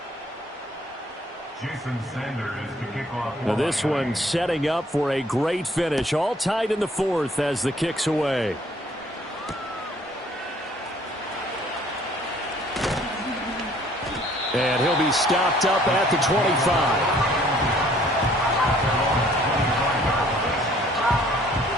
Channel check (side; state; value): both; normal; correlation 0.59